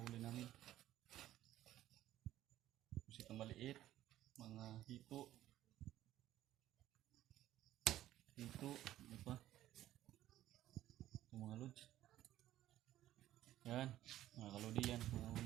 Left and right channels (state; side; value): quieter; left; 13.6 dB